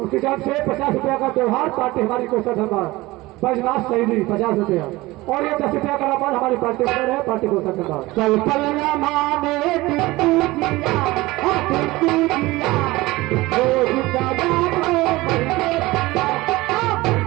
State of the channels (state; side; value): quieter; left; 19.9 dB